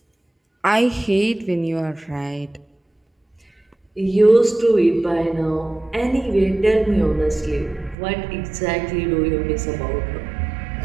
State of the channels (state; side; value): drops out; left; at 8.0 s